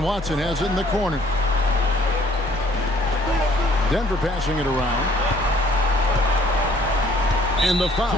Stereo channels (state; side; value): normal; both; correlation 0.59